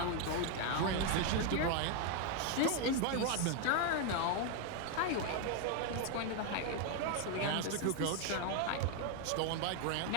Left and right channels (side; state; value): both; different; correlation 0.01